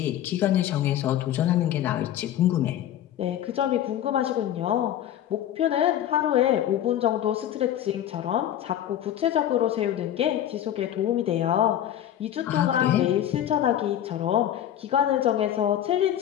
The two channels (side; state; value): right; quieter; 11.3 dB